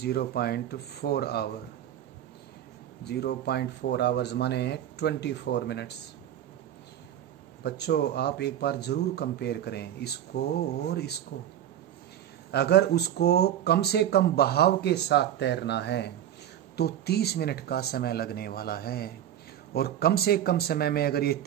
hour, 0.4 hours माने 24 मिनट्स। बच्चों आप एक बार जरूर कंपेयर करें इसको और इसको। अगर उसको कम से कम बहाव के साथ तैरना है तो 30 मिनट का समय लगने वाला है, और कम से कम समय में अगर ये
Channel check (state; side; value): quieter; left; 10.9 dB